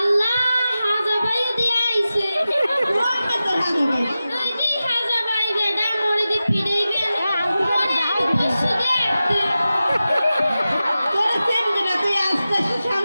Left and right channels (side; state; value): both; inverted; correlation -0.94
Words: হাজা ভাই দিয়ে আইছে ওই যে হাজা ভাই ম্যাডাম মোরে দি পিড়াইবে মোরে আইবে পশু দেখতে